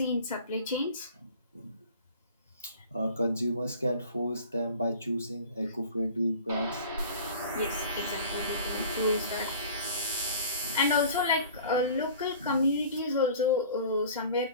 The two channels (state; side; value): inverted; both; correlation -0.44